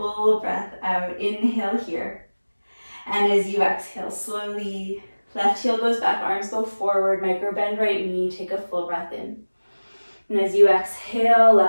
breath out, inhale here. And as you exhale, slowly, left heel goes back, arms go forward, micro bend right knee, take a full breath in. And as you exhale,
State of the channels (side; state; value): both; inverted; correlation -1.00